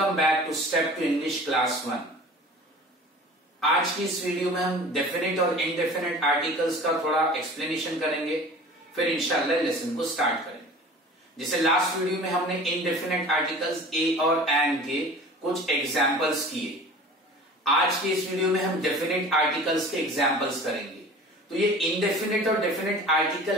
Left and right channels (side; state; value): both; normal; correlation 0.42